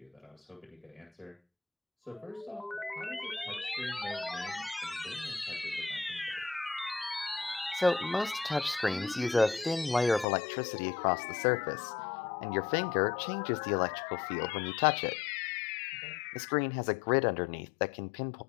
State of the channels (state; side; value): drops out; right; at 10.2 s